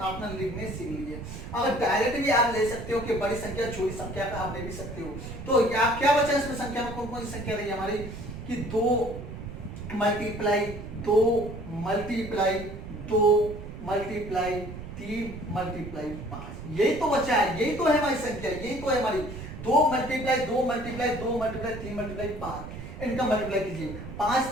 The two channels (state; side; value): noise; right; rumble, 11 dB below the sound